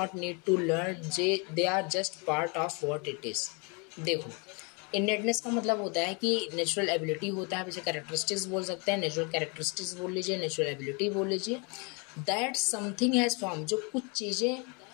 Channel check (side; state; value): right; quieter; 32.6 dB